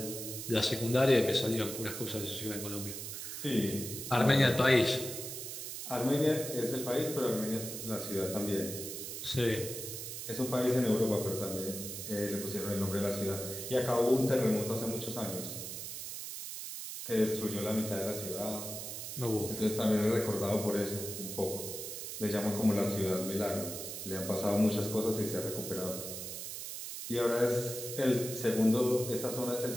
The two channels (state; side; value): noise; right; hiss, 7 dB below the sound